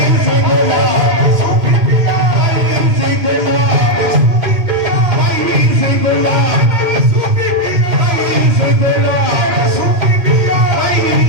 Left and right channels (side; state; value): left; late; 2.6 ms